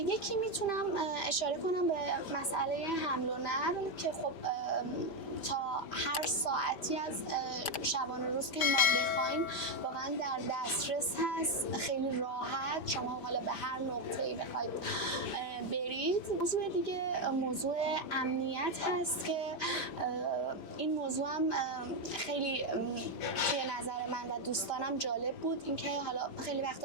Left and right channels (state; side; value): late; right; 5.0 ms